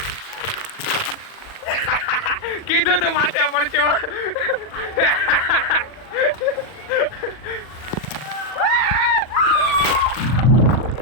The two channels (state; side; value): late; right; 40 ms